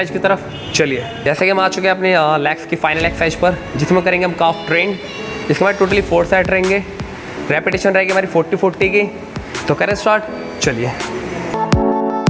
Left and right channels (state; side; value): identical; both; correlation 1.00